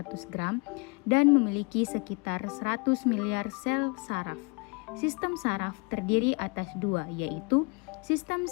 gram dan memiliki sekitar 100 miliar sel saraf. Sistem saraf terdiri atas dua, yaitu sistem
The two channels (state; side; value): quieter; right; 31.1 dB